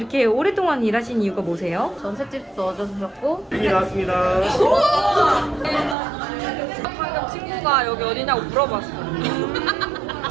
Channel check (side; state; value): left; drops out; at 6.0 s